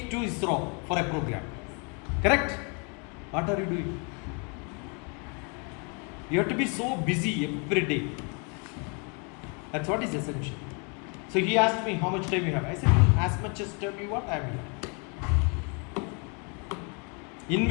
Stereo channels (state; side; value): quieter; right; 35.3 dB